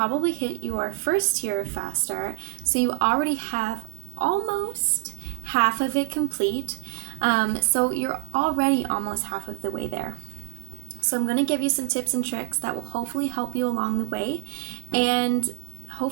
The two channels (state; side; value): silent; left; 61 dB below the other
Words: hit your first tier of faster, so you already have almost half of it complete. So you're already almost half of the way there. So I'm going to give you some tips and tricks that will hopefully help you along the way, and